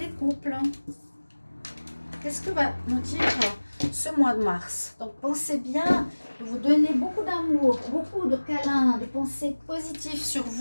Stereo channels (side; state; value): both; inverted; correlation -1.00